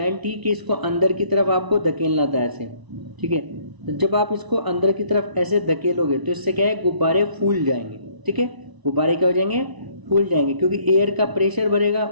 थी कि इसको अंदर की तरफ आपको धकेलना था ऐसे, ठीक है। तो जब आप इसको अंदर की तरफ ऐसे धकेलोगे तो इससे क्या है, गुब्बारे फूल जाएंगे, ठीक है, गुब्बारे क्या हो जाएंगे, फूल जाएंगे, क्योंकि एयर का प्रेशर बढ़ेगा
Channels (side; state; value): left; late; 1.0 ms